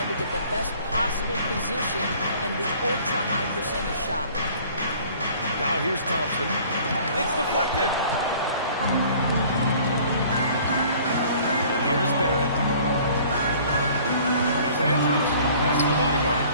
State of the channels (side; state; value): both; inverted; correlation -0.52